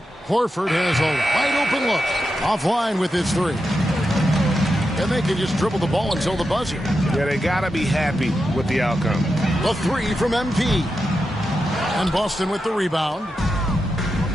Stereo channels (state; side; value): normal; both; correlation 0.88